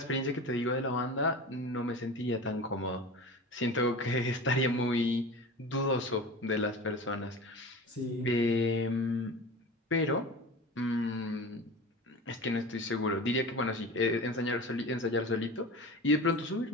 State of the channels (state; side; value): normal; both; correlation 0.33